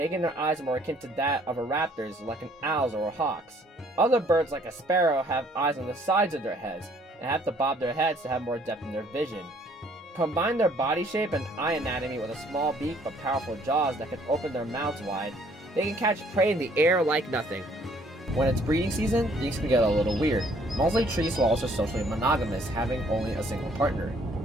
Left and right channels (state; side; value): normal; both; correlation 0.61